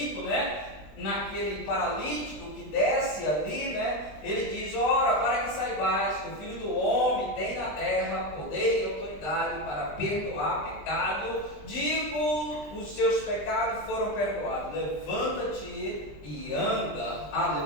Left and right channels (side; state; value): right; late; 20 ms